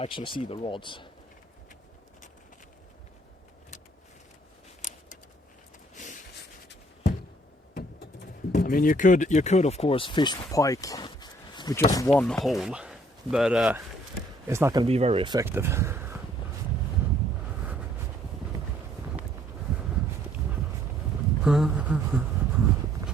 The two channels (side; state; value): both; normal; correlation 0.62